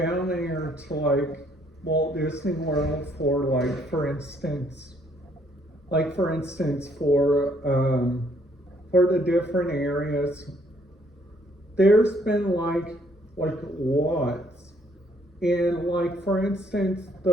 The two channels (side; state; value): both; normal; correlation 0.67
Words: like Walt Disney World for like, for instance, for the different areas, there's been like lots. And like, for instance,